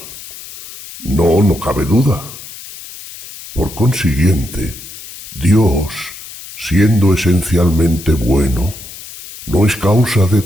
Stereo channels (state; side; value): noise; left; hiss, 15 dB below the sound